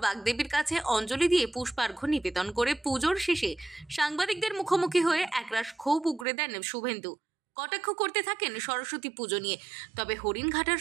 বাগদেবীর কাছে অঞ্জলি দিয়ে পুষ্পার্ঘ্য নিবেদন করে পুজোর শেষে সাংবাদিকদের মুখোমুখি হয়ে একরাশ ক্ষোভ উগরে দেন শুভেন্দু। কটাক্ষ করতে থাকেন সরস্বতী পুজো নিয়ে। তবে হরিণঘাটার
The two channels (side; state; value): left; drops out; at 6.2 s